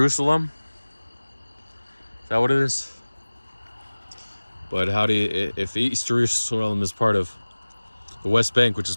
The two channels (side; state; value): both; inverted; correlation -1.00